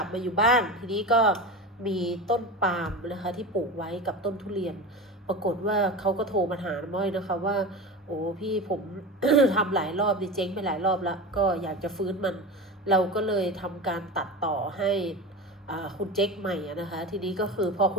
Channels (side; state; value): both; normal; correlation 0.28